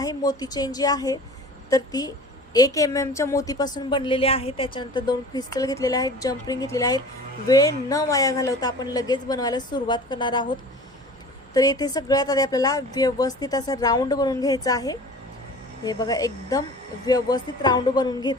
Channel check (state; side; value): normal; both; correlation 0.41